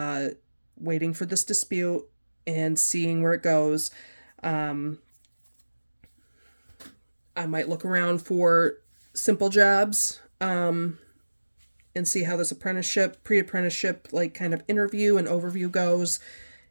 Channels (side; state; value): both; inverted; correlation -1.00